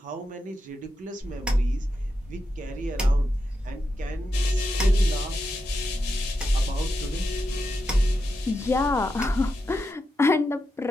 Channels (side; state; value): both; normal; correlation 0.87